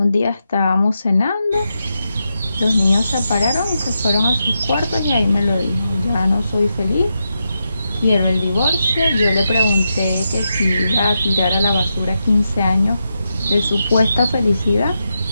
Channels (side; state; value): both; inverted; correlation -0.86